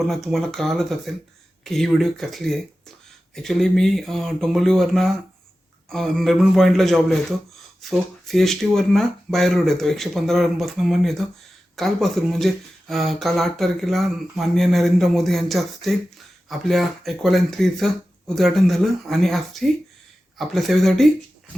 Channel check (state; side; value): normal; both; correlation 0.94